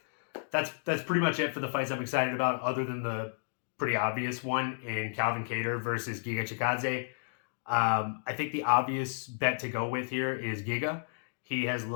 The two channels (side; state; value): right; silent; digital silence